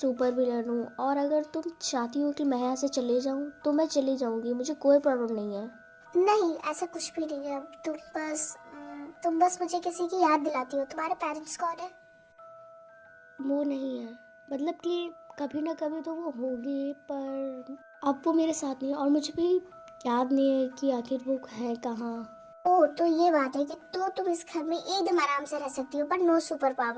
विलन हूँ, और अगर तुम चाहती हो कि मैं यहाँ से चले जाऊँ तो मैं चली जाऊँगी, मुझे कोई प्रॉब्लम नहीं है। नहीं, ऐसा कुछ भी नहीं है। तुम बस मुझे किसी की याद दिलाती हो। तुम्हारे पेरेंट्स कौन है? वो नहीं है, मतलब कि कभी ना कभी तो वो होगी, पर अब वो मेरे साथ नहीं है, और मुझे भी याद नहीं है कि आखिर वो है कहाँ। ओह, तो ये बात है कि तो तुम इस घर में एकदम आराम से रह सकती हो, पर नो सुपर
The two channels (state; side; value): identical; both; correlation 1.00